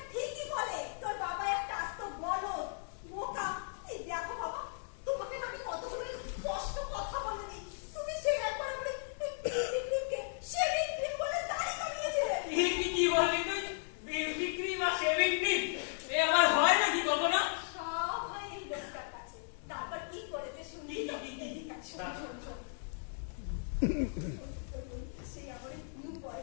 ঠিকই বলে তোর বাবা একটা আস্ত বলদ, বোকা। এই দেখো বাবা, তোমাকে আমি কতগুলো স্পষ্ট কথা বলিনি, তুমি সেই একবার আমাকে শেভিং ক্রিম বলে দাড়ি কামিয়েছিলে। কি বললি তুই? বিউটি ক্রিম আর শেভিং ক্রিম এ আমার হয় নাকি কখনো? সব হয় এই লোকটার কাছে। তারপর কি করেছে শুনি তো? এদিকে শোন শোন শোন। সেই আমার নিউ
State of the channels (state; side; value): silent; right; digital silence